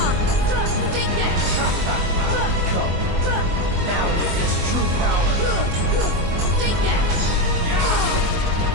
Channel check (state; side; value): late; left; 24 ms